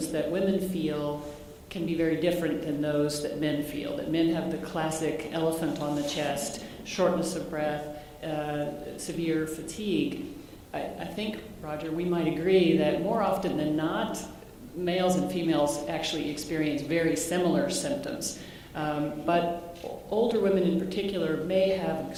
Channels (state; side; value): identical; both; correlation 1.00